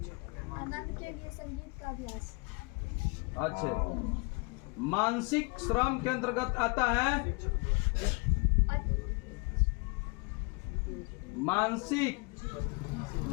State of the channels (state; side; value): quieter; right; 29.6 dB